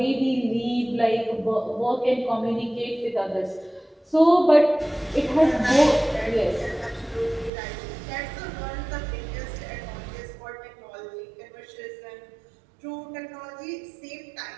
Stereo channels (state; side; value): drops out; left; at 7.5 s